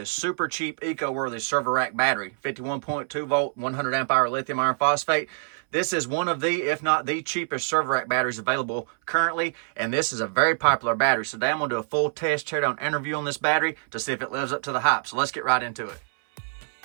super cheap eco-worthy server rack battery. 51.2 volt, 100 amp hour lithium iron phosphate. This is one of the, if not the cheapest server rack batteries available currently, and this is a very popular battery. So today I'm going to do a full test teardown interview on this battery to see if it lives up to the hype. So let's get right into it.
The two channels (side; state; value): left; silent; 61 dB below the other